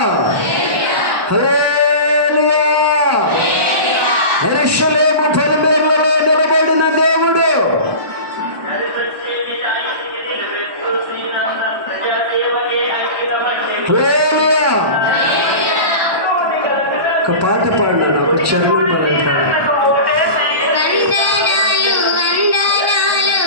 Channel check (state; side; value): late; left; 1.2 ms